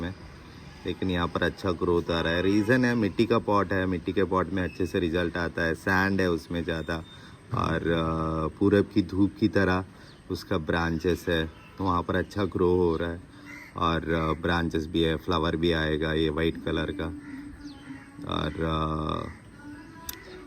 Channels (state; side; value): identical; both; correlation 1.00